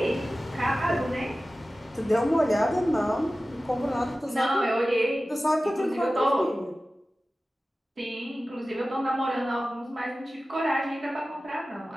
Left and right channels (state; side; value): normal; both; correlation 0.96